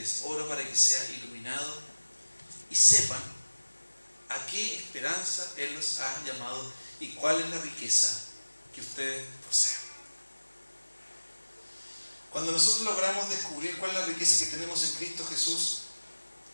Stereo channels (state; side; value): inverted; both; correlation -1.00